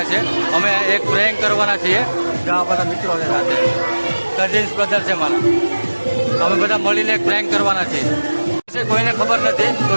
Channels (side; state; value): both; inverted; correlation -1.00